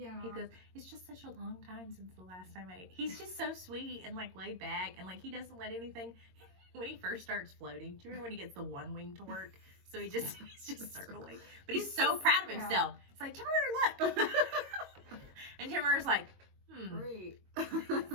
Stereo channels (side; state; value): left; late; 22 ms